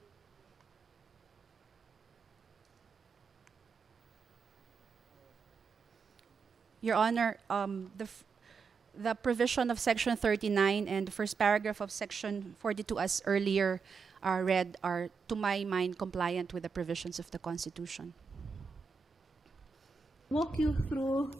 Your Honor, the provision of Section 39 and the first paragraph of Section 42, as earlier read, are, to my mind, compliant with the provisions of the Constitution. Walk you through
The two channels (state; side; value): quieter; left; 5.2 dB